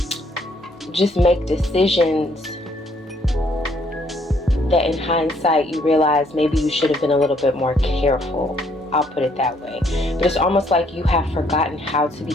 just make decisions that in hindsight you realize maybe you should have been a little bit more careful. I'll put it that way. But it's almost like you have forgotten how to be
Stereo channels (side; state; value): both; normal; correlation 0.67